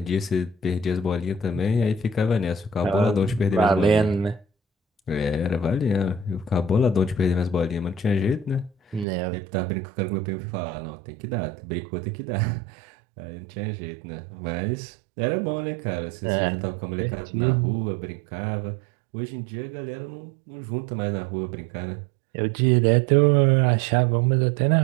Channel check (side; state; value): left; drops out; at 9.1 s